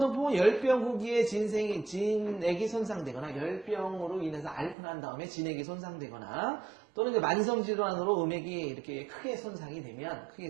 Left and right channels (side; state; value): left; drops out; at 4.8 s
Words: 열병 후기에 진액이 손상되거나 열병으로 인해서 앓고 난 다음에 진액이 손상되거나 또는 이제 만성 질환으로 음액이 이렇게 크게 손상이 되면